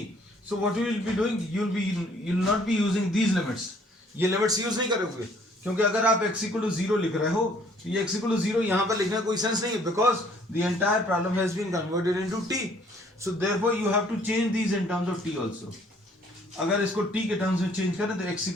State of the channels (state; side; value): normal; both; correlation 0.60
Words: so what you will be doing? You will not be using these limits. ये limits use नहीं करोगे क्योंकि अगर आप x equal to 0 लिख रहे हो तो ये x equal to 0 यहाँ पर लिखने का कोई सेंस नहीं है because the entire problem has been converted into t. So therefore you have to change these in terms of t also. अगर इसको t के टर्म्स में चेंज करें तो x